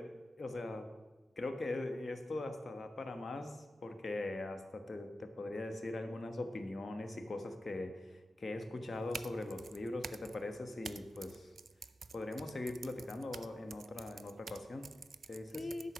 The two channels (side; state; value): both; normal; correlation 0.92